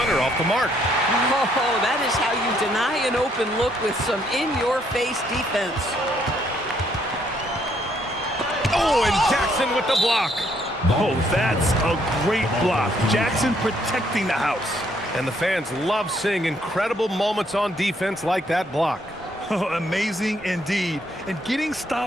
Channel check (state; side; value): normal; both; correlation 0.70